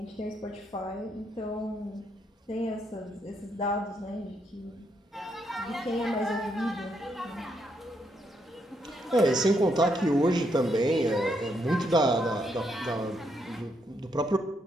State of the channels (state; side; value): normal; both; correlation 0.77